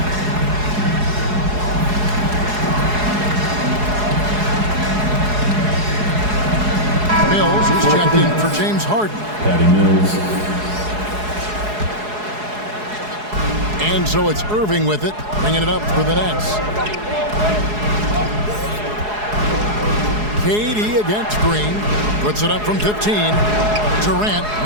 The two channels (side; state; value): left; late; 4.8 ms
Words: Mills is checked in for James Harden. Patty Mills. And so it's Irving with it, bringing it up for the Nets. KD against Green. Puts it up from 15. Durant,